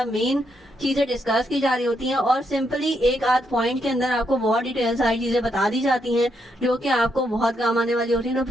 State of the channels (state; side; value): normal; both; correlation 0.78